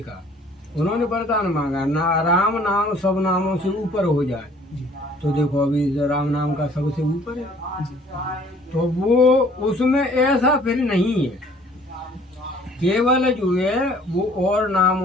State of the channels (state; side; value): normal; both; correlation 0.56